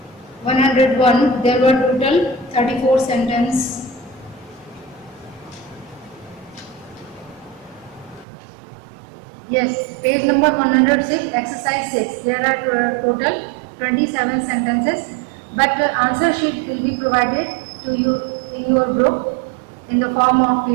101. There were total 34 sentences. Yes, page number 106, exercise 6. There are total 27 sentences, but answer sheet will be provided to you in your group in the form of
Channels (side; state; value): left; drops out; at 8.2 s